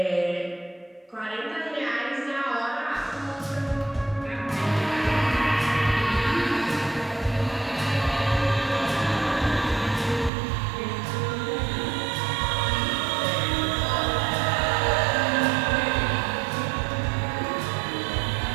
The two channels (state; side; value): drops out; left; at 10.3 s